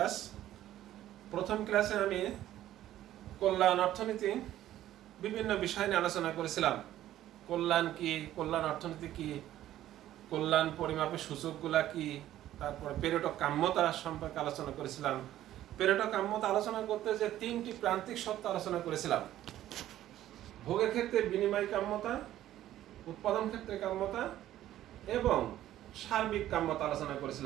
প্রথম ক্লাসে আমি কল্যাণ অর্থনীতি বিভিন্ন বিষয় নিয়ে আলোচনা করেছিলাম। কল্যাণ কি, কল্যাণ অর্থনীতি কি, কল্যাণ পরিমাপের সূচকগুলা কি, তারপরে পেরেটো কাম্যতা সম্পর্কে আলোচনা করেছিলাম। পেরেটো কাম্যতা আলোচনা করতে যে তিনটি প্রান্তিক সত্য আলোচনা করেছিলাম: ভোগের ক্ষেত্রে বিনিময় কাম্যতা, উৎপাদন ক্ষেত্রে কাম্যতা এবং সার্বিক কাম্যতা আলোচনা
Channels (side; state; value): left; quieter; 13.1 dB